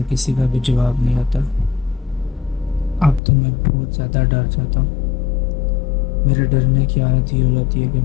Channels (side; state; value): right; drops out; at 3.2 s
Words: کسی کا بھی جواب نہیں آتا۔ اب تو میں بہت زیادہ ڈر جاتا ہوں۔ میرے ڈرنے کی حالت یہ ہو جاتی ہے کہ